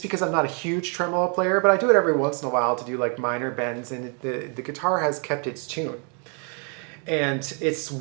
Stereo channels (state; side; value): quieter; left; 39.0 dB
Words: because I'm not a huge tremolo player, but I do it every once in a while to do like minor bends, and the guitar has kept its tune. And it's